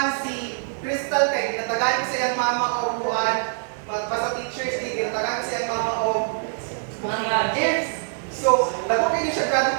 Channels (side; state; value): left; silent; digital silence